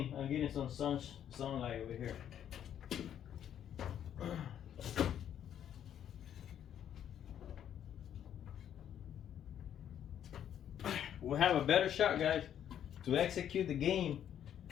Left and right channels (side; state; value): right; quieter; 9.9 dB